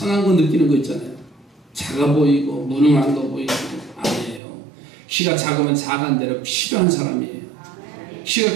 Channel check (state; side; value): drops out; left; at 4.4 s